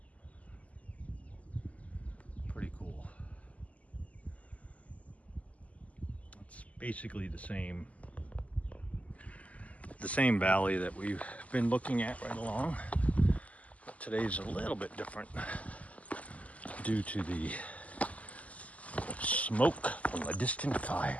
pretty cool. It's basically the same valley that we've been looking at right along, but today's a little bit different due to the smoke from a distant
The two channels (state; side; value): late; right; 0.070 ms